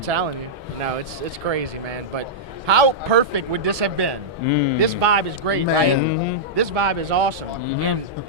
you. You know, it's crazy, man. But how perfect would this have been? This vibe is great, right? This vibe is awesome. And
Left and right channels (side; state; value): both; normal; correlation -0.10